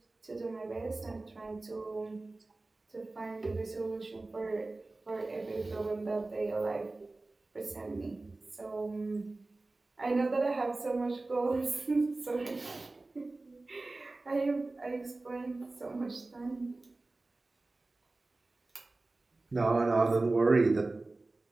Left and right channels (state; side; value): quieter; left; 3.2 dB